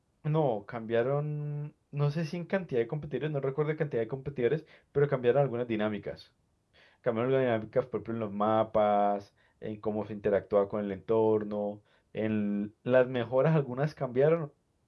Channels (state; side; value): identical; both; correlation 1.00